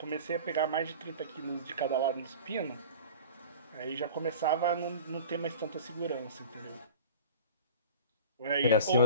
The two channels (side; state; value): both; inverted; correlation -0.39